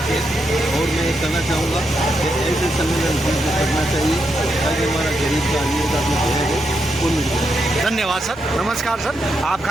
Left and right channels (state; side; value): noise; right; hum, 24 dB below the sound